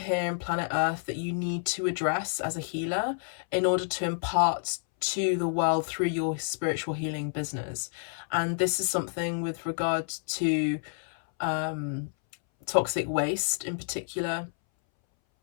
in planet Earth that you need to address as a healer in order to impart to the world through your spiritual healing business. And this is something with regard to toxic waste in particular.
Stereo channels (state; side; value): silent; right; 58 dB below the other